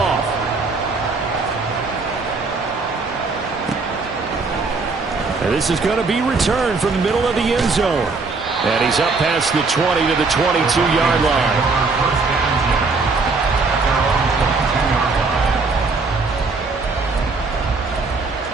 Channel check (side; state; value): left; quieter; 4.1 dB